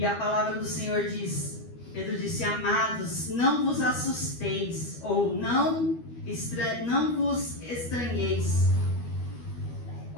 a palavra do Senhor diz, Pedro disse: amados, não vos assusteis, ou não vos estranheis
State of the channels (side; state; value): right; late; 13 ms